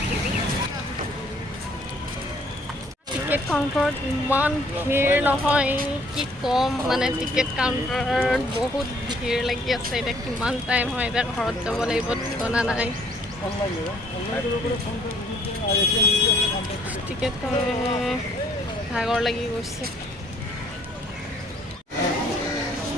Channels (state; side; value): normal; both; correlation 0.62